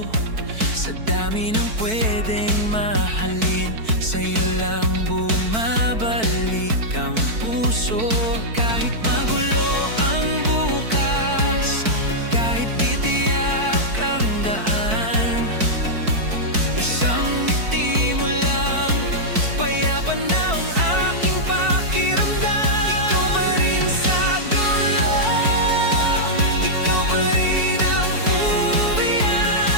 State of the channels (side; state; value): left; late; 4.5 ms